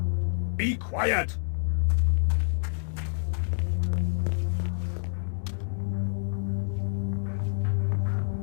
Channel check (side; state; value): right; silent; digital silence